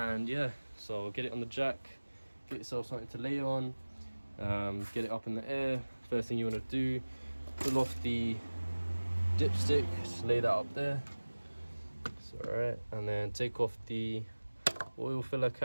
yeah, so get it on the jack, get yourself something to lay on, get it up in the air. First thing you want to do, pull off the dipstick, just lay that up there. It's alright. And then take off the oil filler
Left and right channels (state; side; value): inverted; both; correlation -1.00